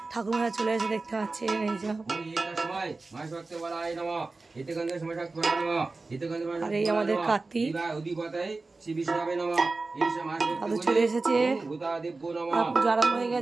ঠাকুরমশাই চলে এসে দেখতে পাচ্ছেন এইসব। আর এই আমাদের কার্তিক চলে এসেছে, পুজো আরম্ভ হয়ে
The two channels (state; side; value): quieter; left; 3.6 dB